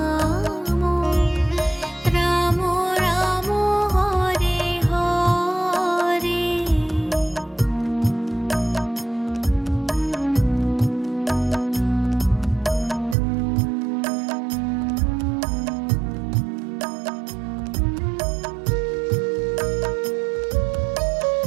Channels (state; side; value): drops out; left; at 13.2 s